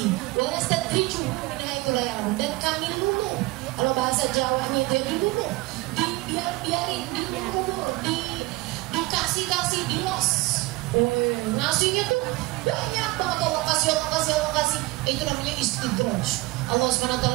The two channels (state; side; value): quieter; left; 21.8 dB